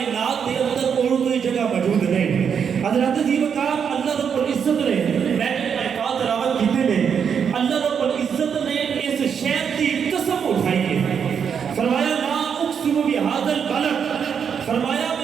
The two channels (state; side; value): quieter; left; 7.2 dB